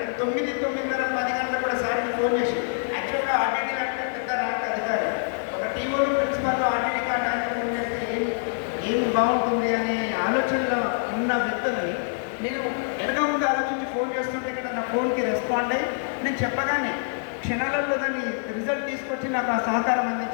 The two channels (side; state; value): right; silent; digital silence